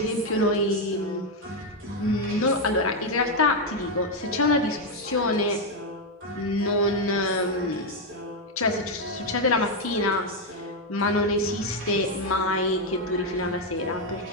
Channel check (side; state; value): both; normal; correlation 0.03